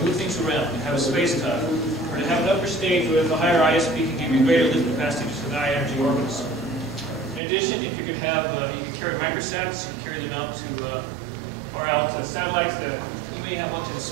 move things around, to have a space tug, or to have an upper stage where the higher ISP can give you greater lift capacity to the high energy orbits. In addition, if you could have, you could carry microsats, you could carry them out to, or out to satellites that you may have one to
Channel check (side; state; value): left; drops out; at 7.4 s